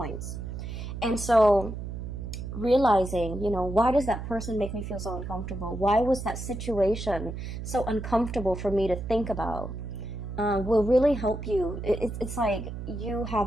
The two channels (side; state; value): right; noise; hum, 7 dB below the sound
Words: And so realizing, why does that person make me feel so uncomfortable? Why was that situation so uncomfortable for me to think about? Will really help you. It's like you